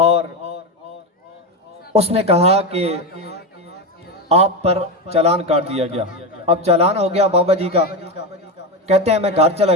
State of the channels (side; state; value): both; normal; correlation 0.15